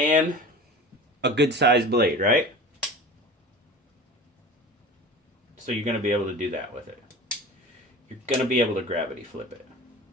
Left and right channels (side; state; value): both; normal; correlation 0.36